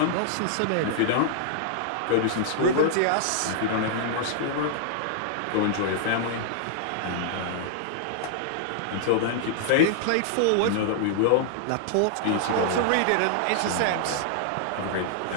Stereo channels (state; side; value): different; both; correlation -0.01